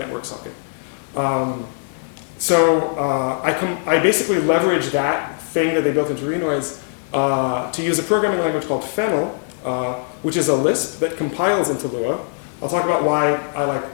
socket. I basically leverage that thing that they built into Renoise to use a programming language called Fennel, which is a Lisp that compiles into Lua. I'll talk about why I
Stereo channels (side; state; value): right; silent; digital silence